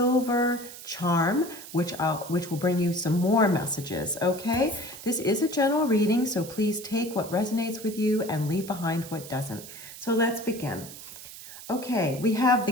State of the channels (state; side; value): noise; right; hiss, 14 dB below the sound